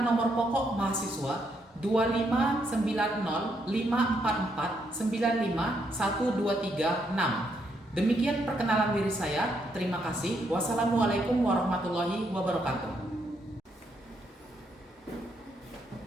nomor pokok mahasiswa 25904495123 Demikian perkenalan diri saya. Terima kasih. Wassalamualaikum warahmatullahi wabarakatuh.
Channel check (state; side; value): normal; both; correlation 0.76